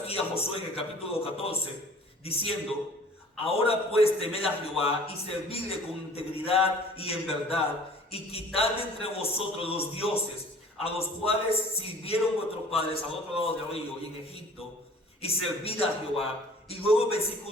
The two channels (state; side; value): normal; both; correlation 0.49